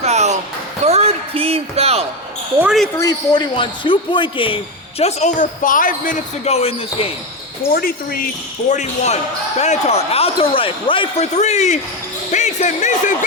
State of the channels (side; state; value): both; normal; correlation 0.12